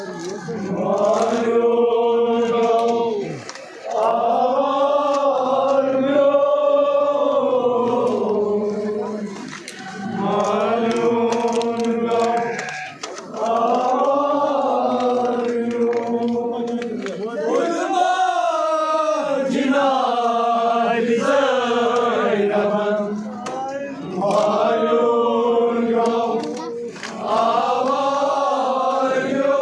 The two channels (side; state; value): both; identical; correlation 1.00